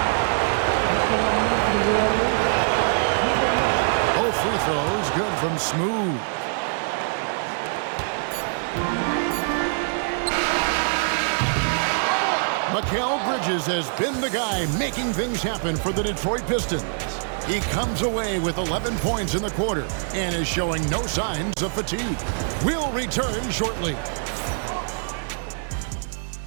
Both free throws good from Smooth. Mikal Bridges has been the guy making things happen for the Detroit Pistons. He comes away with 11 points in the quarter and is showing no signs of fatigue. We'll return shortly.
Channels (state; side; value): silent; left; digital silence